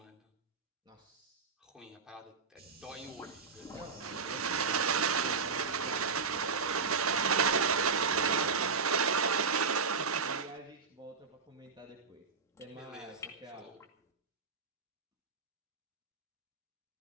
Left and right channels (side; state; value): left; quieter; 5.2 dB